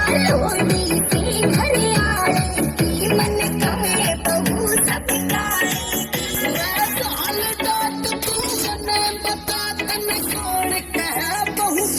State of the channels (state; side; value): identical; both; correlation 1.00